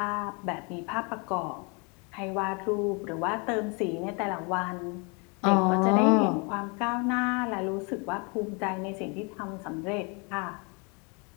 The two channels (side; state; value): right; quieter; 32.4 dB